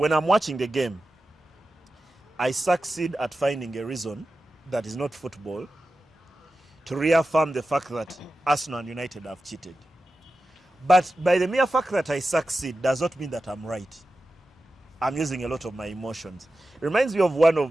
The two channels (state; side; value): normal; both; correlation 0.92